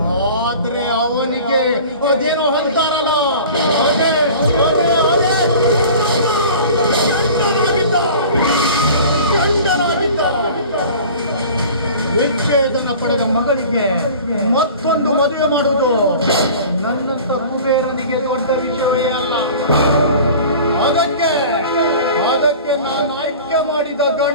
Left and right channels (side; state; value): both; inverted; correlation -0.41